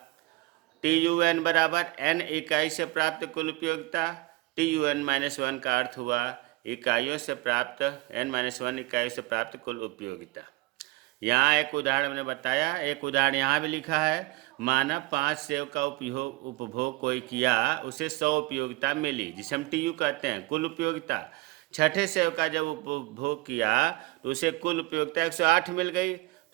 TUN बराबर n इकाई से प्राप्त कुल उपयोगिता, TUN-1 का अर्थ हुआ इकाइयों से प्राप्त, n-1 इकाइयों से प्राप्त कुल उपयोगिता। यहाँ एक उदाहरण हमने बताया, एक उदाहरण यहाँ भी लिखा है। माना 5 सेव का उपभोग कोई किया, उसे 100 उपयोगिता मिली, जिसे हम TU कहते हैं, कुल उपयोगिता। छठे सेव का जब उपभोग किया तो उसे कुल उपयोगिता 108 मिल गई।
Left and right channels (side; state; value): left; quieter; 21.5 dB